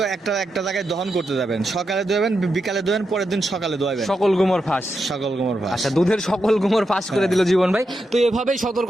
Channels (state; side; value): normal; both; correlation 0.86